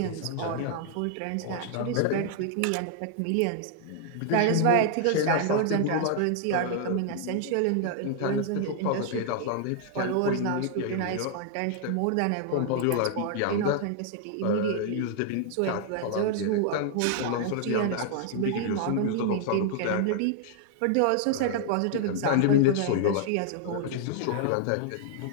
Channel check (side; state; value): both; different; correlation 0.00